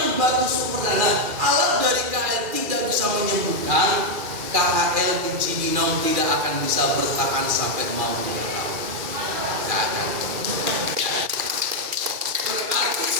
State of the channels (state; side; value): late; left; 2.4 ms